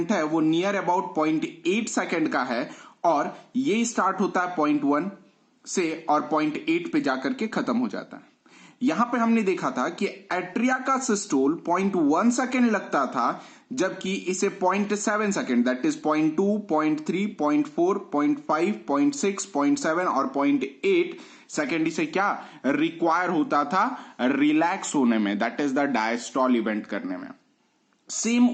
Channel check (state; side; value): identical; both; correlation 1.00